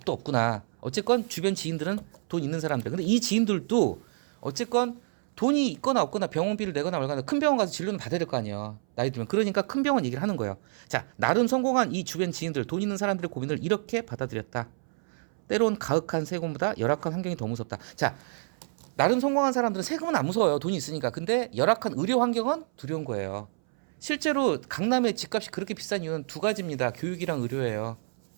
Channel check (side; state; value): left; silent; 59 dB below the other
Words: 없구나. 어쨌건 주변 지인들은 돈 있는 사람들. 근데 이 지인들도 어쨌건 돈이 있거나 없거나 병원비를 내거나 말거나 큰 병원 가서 진료는 받아야 될 거 아니에요. 나이 들면. 그러니까 큰 병원 얘기를 하는 거예요. 자, 나름 성공한 이 주변 지인들, 돈 있는 사람들의 고민을 이렇게 받아들였다. 때론 가혹한 세금보다 열악한 환경이 더 무섭다. 자, 나름 성공한 사람들은 세금은 안 무서워요. 돈이 있으니까. 근데 열악한 의료 환경은 두려운 거예요. 실제로 강남의 집값이 그렇게 비싼 이유는 두 가지입니다. 교육이랑 의료예요.